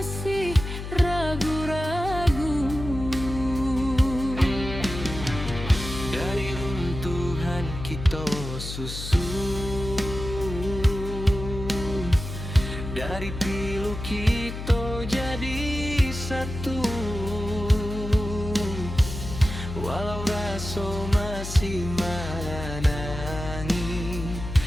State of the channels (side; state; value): left; noise; hum, 8 dB below the sound